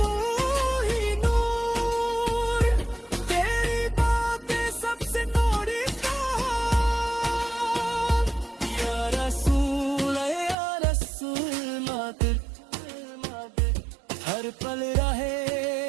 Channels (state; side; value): drops out; left; at 10.6 s